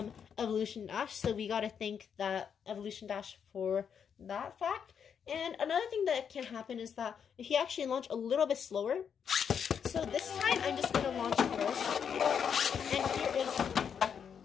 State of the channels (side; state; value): right; quieter; 7.4 dB